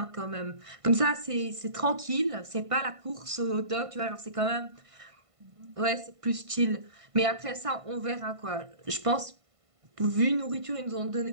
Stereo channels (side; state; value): left; late; 1.5 ms